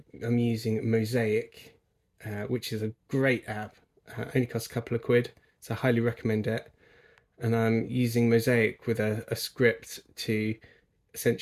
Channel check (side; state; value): both; identical; correlation 1.00